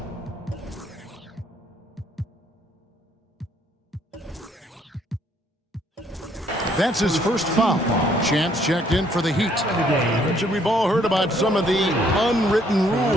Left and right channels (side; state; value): both; normal; correlation 0.66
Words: That's his first foul. Chance checked in for the Heat. Richard, we've all heard about some of the unwritten